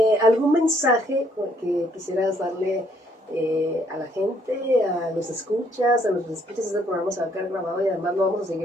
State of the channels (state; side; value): normal; both; correlation 0.67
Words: ¿Algún mensaje que quisieras darle a la gente, a los escuchas, este programa se va a quedar grabado y además lo vamos a